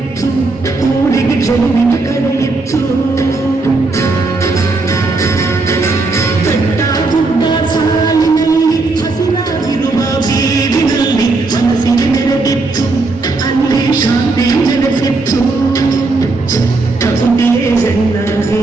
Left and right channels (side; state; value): left; quieter; 3.5 dB